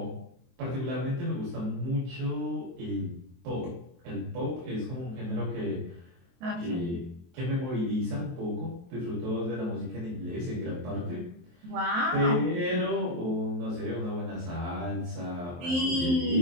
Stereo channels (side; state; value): left; late; 23 ms